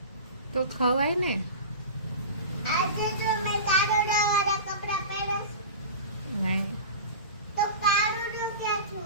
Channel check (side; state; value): both; inverted; correlation -0.31